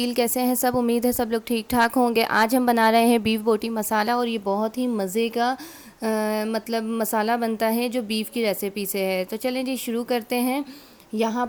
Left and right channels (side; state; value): both; identical; correlation 1.00